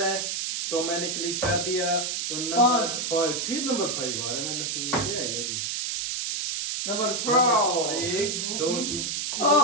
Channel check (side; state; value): right; noise; hiss, 2 dB below the sound